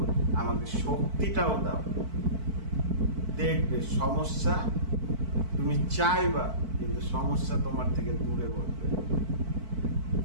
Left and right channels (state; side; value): late; left; 4.5 ms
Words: আমাকে শক্তিটাও দাও। দেখবে সমস্যা তুমি চাইবা, কিন্তু সমস্যা তোমার থেকে দূরে করবে।